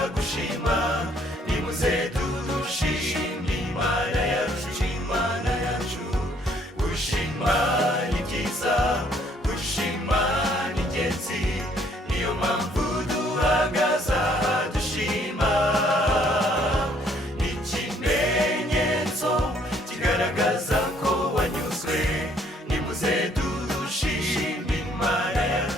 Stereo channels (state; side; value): normal; both; correlation 0.64